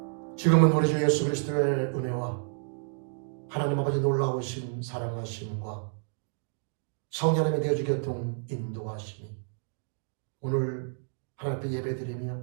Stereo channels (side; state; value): left; silent; digital silence